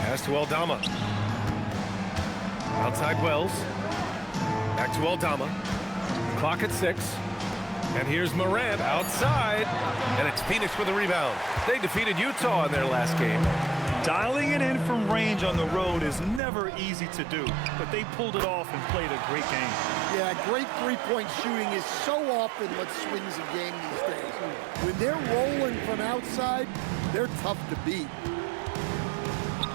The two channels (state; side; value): drops out; left; at 16.4 s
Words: to Aldama. Outside Wells. Back to Aldama. Clock at 6. And here's Morant outside. And it's Phoenix with a rebound. They defeated Utah in their last game. Dialing it in from range on the road is never easy to do, but they pulled it off and played a great game. Yeah, great three-point shooting is so often what swings a game these days. When they're rolling from outside, they're tough to beat.